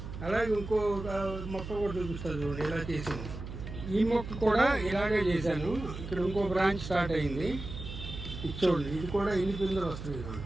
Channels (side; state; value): right; noise; hum, 9 dB below the sound